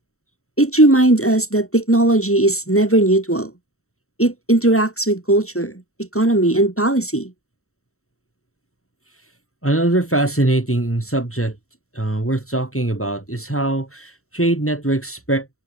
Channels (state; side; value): late; right; 0.63 ms